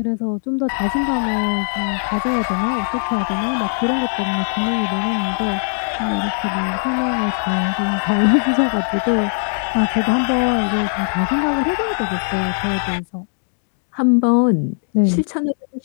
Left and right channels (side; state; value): right; silent; digital silence